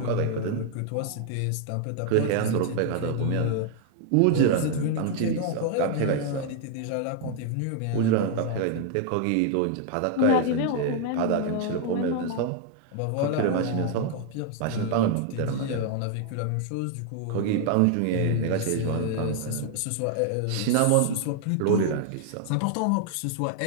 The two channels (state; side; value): different; both; correlation 0.00